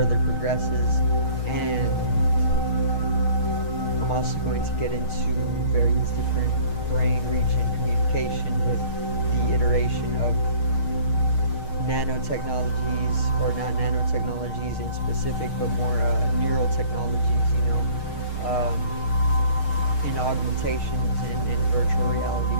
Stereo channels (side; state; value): right; late; 6.5 ms